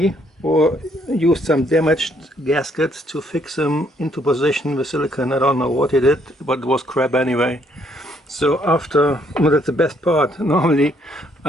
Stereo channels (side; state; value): both; normal; correlation 0.69